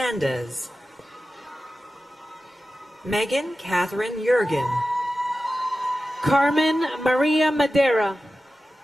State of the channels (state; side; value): normal; both; correlation 0.94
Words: Megan Catherine Jurgen, Carmen Maria Madera,